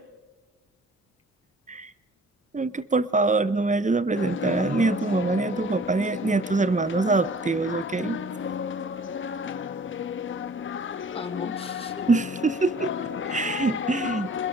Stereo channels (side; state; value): both; normal; correlation 0.51